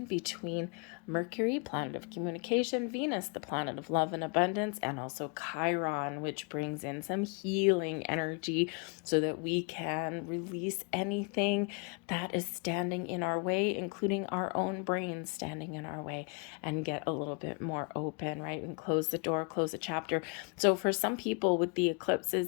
between Mercury, planet of communication, Venus, the planet of love and abundance, and also Chiron, which brings in some healing energy so that we can release anything that is standing in our way, including our own brains standing in our way, and get a little bit more open, right? And close the door, close a chapter. So for some people with the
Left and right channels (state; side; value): quieter; right; 35.3 dB